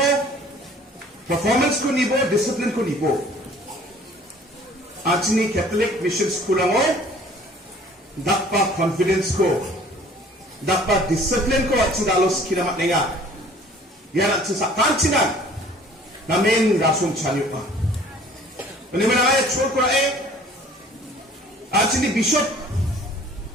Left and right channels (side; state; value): both; normal; correlation 0.52